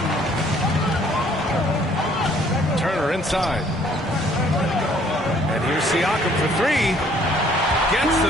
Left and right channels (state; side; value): normal; both; correlation 0.61